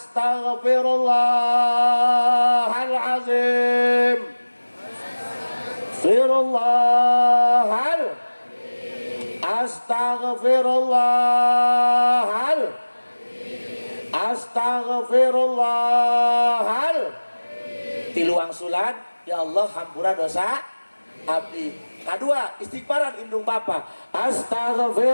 Astaghfirullahal. Astaghfirullahal. Astaghfirullahal. Tiluang sulan. Ya Allah hampura dosa abdi. Kedua, istighfaran indung bapa.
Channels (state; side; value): inverted; both; correlation -1.00